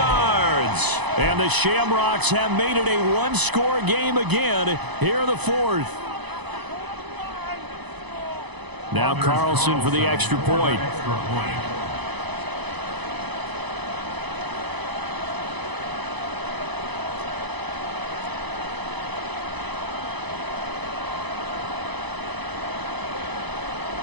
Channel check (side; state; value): left; late; 1.0 ms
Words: And the Shamrocks have made it a one-score game again here in the 4th. Now Carlson for the extra point.